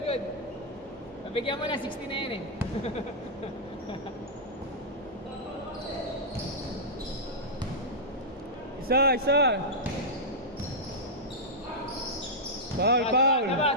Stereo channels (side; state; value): both; normal; correlation -0.10